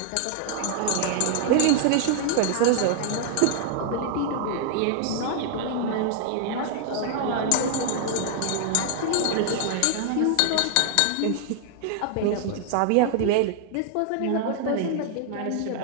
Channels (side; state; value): both; different; correlation 0.00